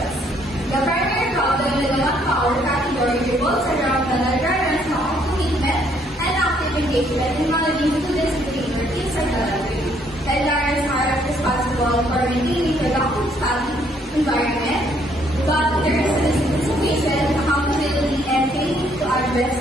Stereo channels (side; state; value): both; normal; correlation 0.67